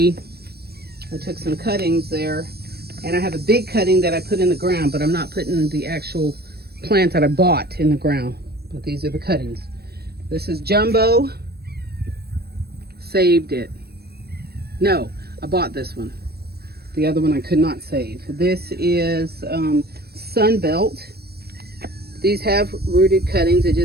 I took some cuttings there, and I have a big cutting that I put in the ground, but I'm not putting the actual plant that I bought in the ground. But these are the cuttings. This is Jumbo. Saved it. No, I bought this one. The other one I could not save. This is Sunbelt. These have rooted cuttings. They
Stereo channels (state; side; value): late; left; 0.46 ms